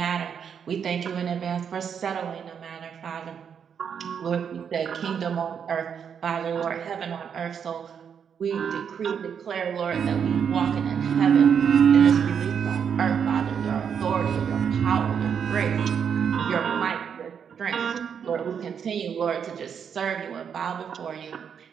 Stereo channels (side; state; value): left; quieter; 7.4 dB